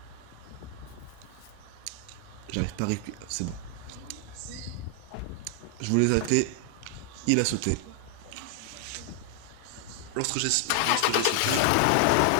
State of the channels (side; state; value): both; different; correlation 0.00